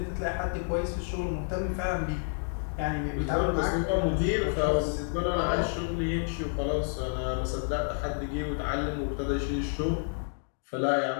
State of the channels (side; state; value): right; silent; 58 dB below the other